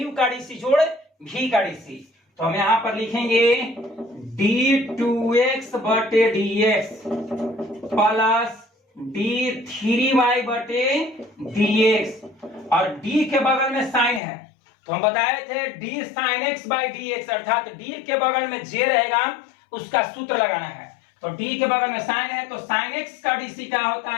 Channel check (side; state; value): right; drops out; at 14.2 s